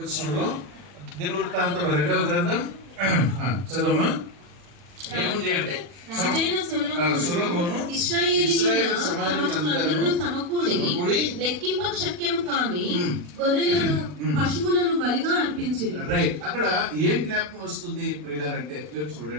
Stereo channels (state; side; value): late; left; 40 ms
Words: దినవృత్తాంతంలో 2వ గ్రంథం చదవమ్మా. ఏముంది అంటే సొలొమోను ఇశ్రాయేలు సమాజములందరూ సమకూడి లెక్కింప శక్యము కాని గొర్రెలను పశువులను బలిగా అర్పించిరి. రైట్. అక్కడ ఏం జ్ఞాపకం వస్తుంది ప్రియులారంటే